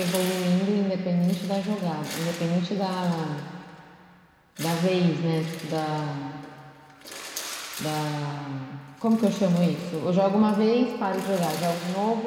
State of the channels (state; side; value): identical; both; correlation 1.00